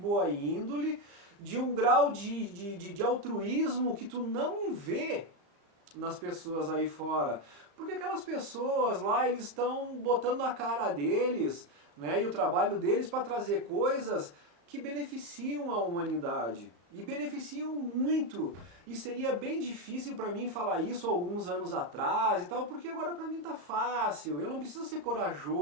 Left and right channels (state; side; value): late; left; 35 ms